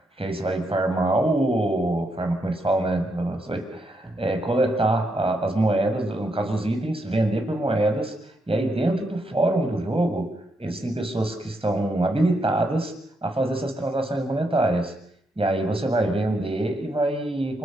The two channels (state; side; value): normal; both; correlation 0.80